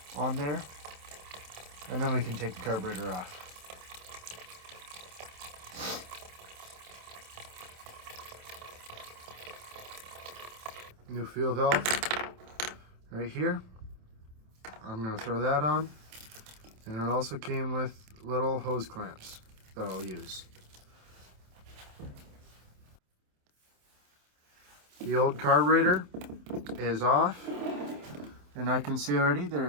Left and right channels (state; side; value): late; left; 27 ms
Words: on there, and then we can take the carburetor off. New fuel valve right here. I'm going to throw that on, and it also came with little hose clamps that I'll use. The old carburetor is off, and I can see already